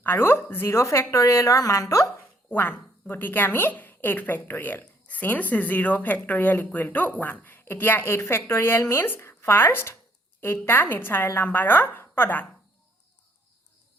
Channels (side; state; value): both; normal; correlation 0.67